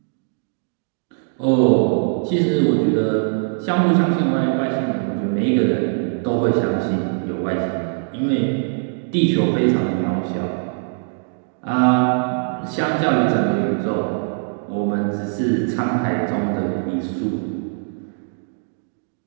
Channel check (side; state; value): left; silent; digital silence